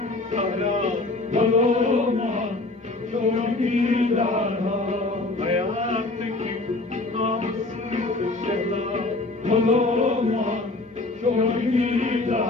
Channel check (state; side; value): quieter; right; 3.1 dB